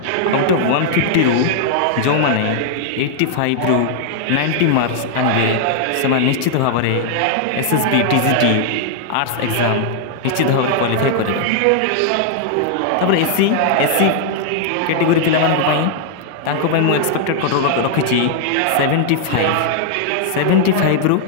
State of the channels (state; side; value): different; both; correlation -0.01